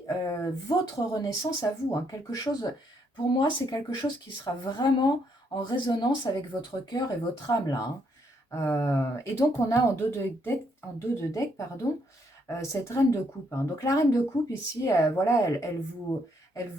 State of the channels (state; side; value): normal; both; correlation 0.73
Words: votre renaissance à vous. Hein, quelque chose, pour moi, c'est quelque chose qui sera vraiment en résonance avec votre cœur et votre âme là. Hein. Et donc on a en dos de deck, pardon, cette reine de coupe. Hein. Donc la reine de coupe ici, voilà, elle vous